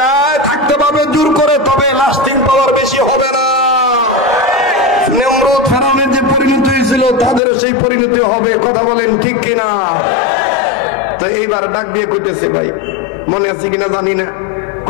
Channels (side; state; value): right; drops out; at 7.4 s